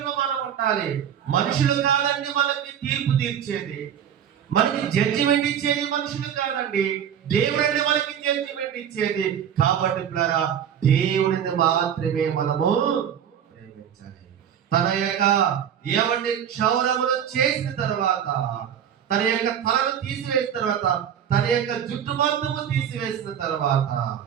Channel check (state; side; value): quieter; left; 9.0 dB